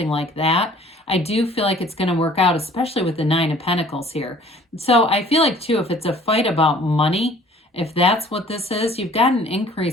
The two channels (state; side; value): normal; both; correlation 0.53